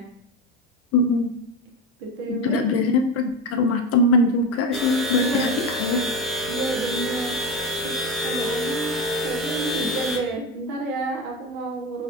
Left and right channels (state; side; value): normal; both; correlation 0.18